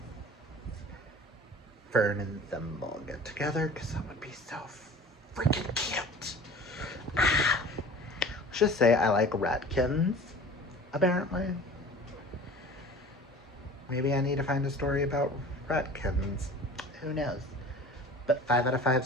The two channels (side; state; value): both; normal; correlation 0.42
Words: Fern and Thimble get together, because that would be so freaking cute. Ah. Let's just say I like Redkins, apparently. Maybe I need to find a story about Redkins. Who knows? But 5 out of 5